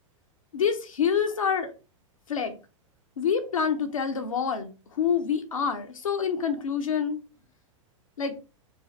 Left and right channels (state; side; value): quieter; right; 6.5 dB